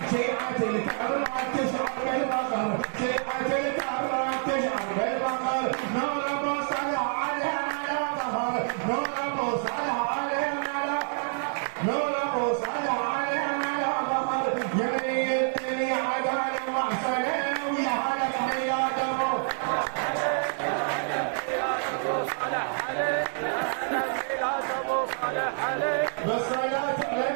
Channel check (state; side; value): silent; left; 60 dB below the other